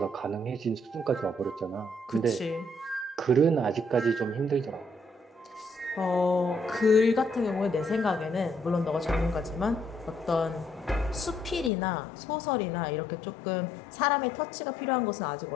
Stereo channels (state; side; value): drops out; right; at 11.7 s